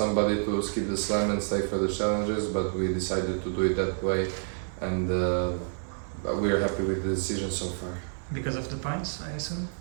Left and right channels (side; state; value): left; silent; 59 dB below the other